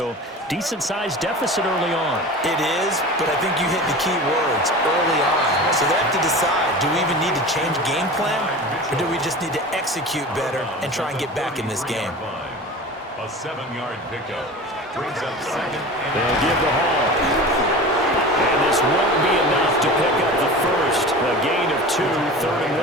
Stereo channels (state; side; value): normal; both; correlation 0.34